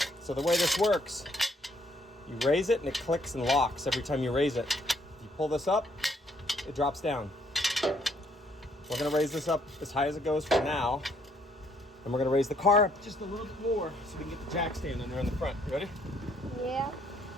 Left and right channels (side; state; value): both; normal; correlation 0.67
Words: So the way this works, you raise it and it clicks and locks every time you raise it. You pull this up, it drops down. We're gonna raise this up as high as it goes for now. And we're gonna raise the car up just a little bit more so we can get the jack stand in there in the front. You ready? Yeah.